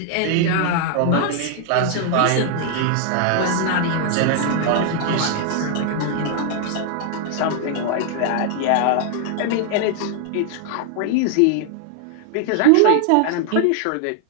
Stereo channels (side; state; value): both; different; correlation 0.00